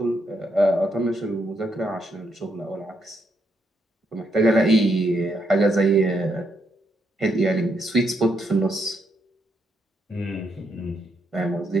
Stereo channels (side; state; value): both; normal; correlation 0.77